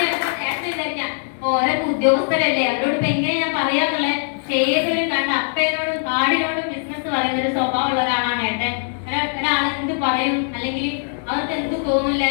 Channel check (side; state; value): right; silent; digital silence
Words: ഓരോ ഉദ്യോഗസ്ഥരല്ലേ അവരോട് ഇപ്പൊ എങ്ങനെ ഞാൻ പറയാന്നുള്ളത്. ഏതൊരു കണ്ട അപ്പേനോടും കാടിനോടും ബിസിനസ് പറയുന്ന ഒരു സ്വഭാവമുള്ള ഒരാളാണ് ഏട്ടൻ. ഒരാൾ എന്ത് പറയും അല്ലെങ്കിൽ അവർക്ക് എന്ത് തോന്നില്ല.